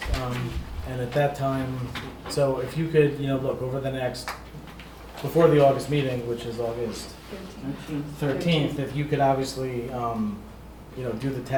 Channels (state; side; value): identical; both; correlation 1.00